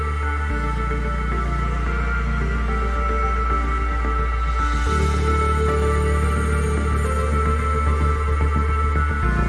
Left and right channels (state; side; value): identical; both; correlation 1.00